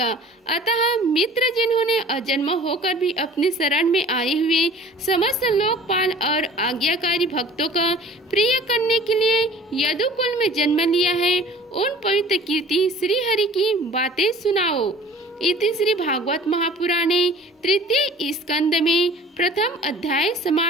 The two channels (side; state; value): both; normal; correlation 0.47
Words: अतः मित्र जिन्होंने अजन्म होकर भी अपने शरण में आए हुए समस्त लोकपाल और आज्ञाकारी भक्तों का प्रिय करने के लिए यदुकुल में जन्म लिया है, उन पवित्र कीर्ति श्री हरि की बातें सुनाओ। इति श्री भागवत महापुराणे तृतीय स्कंद में प्रथम अध्याय